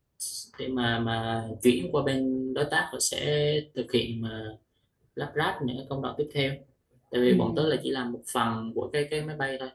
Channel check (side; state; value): both; identical; correlation 1.00